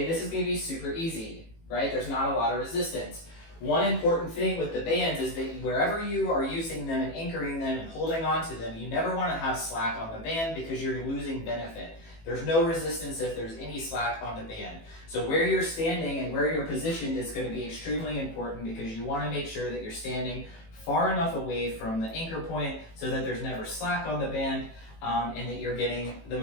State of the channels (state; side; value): late; right; 18 ms